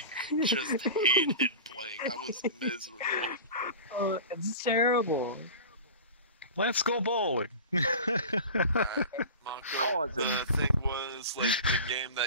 just hated playing. I was miserable. It's terrible. Let's go bowling. Mako, Cousin. the thing was, like, the game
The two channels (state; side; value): inverted; both; correlation -0.33